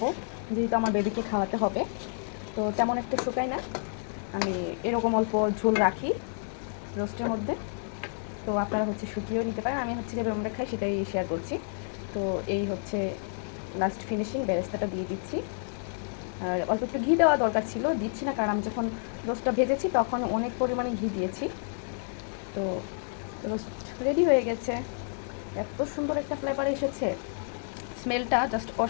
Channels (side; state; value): right; silent; digital silence